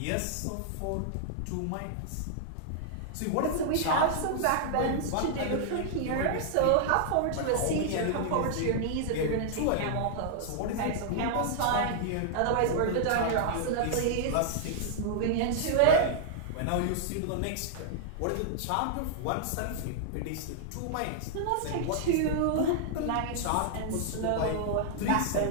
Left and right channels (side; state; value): both; different; correlation -0.01